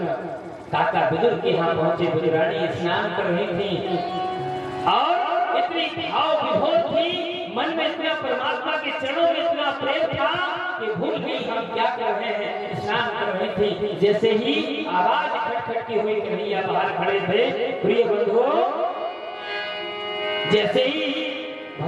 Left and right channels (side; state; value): both; identical; correlation 1.00